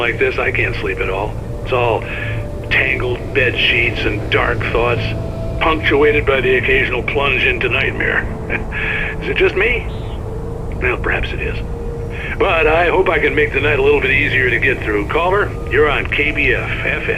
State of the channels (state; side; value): identical; both; correlation 1.00